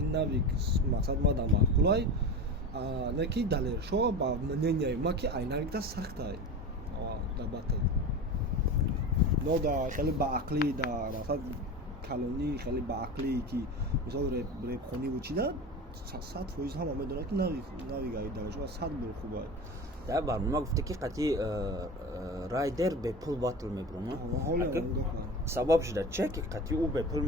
навик мақсад ма да мақулай на ки далешо ба мнение ма ки айнак да сахтай да батл но да хеле ба ақли да мақсад калони хеле ба ақлӣ ки мисол репхонӣ вучида 100% ҳама медонад ки навигаи далешо 100 бор хуба дар барнома гуфта ки қати райдер бе пул батл мебурам сабаб шуда че ки қати ӯ бе пул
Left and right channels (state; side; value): normal; both; correlation 0.29